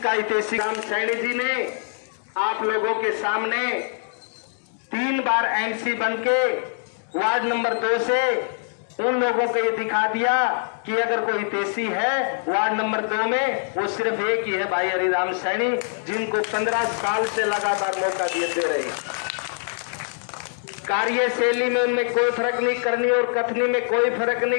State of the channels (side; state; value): right; silent; digital silence